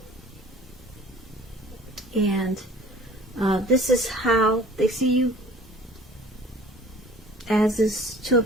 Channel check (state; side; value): normal; both; correlation 0.47